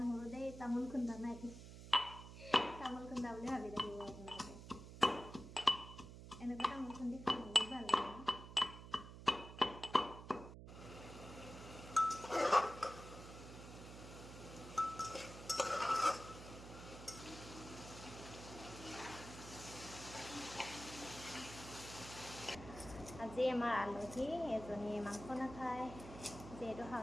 দেই, তামোল খুন্দা নাই, তামোল খুন্দা বুলি ভাবি থাকিব আপোনালোকে। এনেকুৱা তামোল খুন্দি খাই বহুত ভাল লাগে। আজি আমাৰ আলহী এজনীয়ে মাংস নাখায়, যিহেতু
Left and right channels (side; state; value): right; noise; hum, 13 dB below the sound